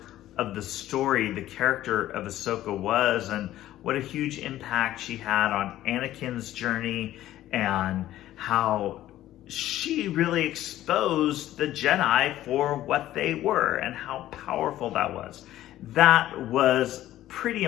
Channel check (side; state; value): right; quieter; 13.8 dB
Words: of the story the character of Ahsoka was, and what a huge impact she had on Anakin's journey, and how she really exposed the Jedi for what they were and how powerful that was. That was pretty